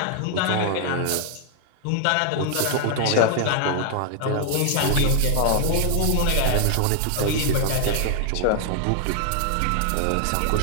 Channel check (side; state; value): both; different; correlation 0.00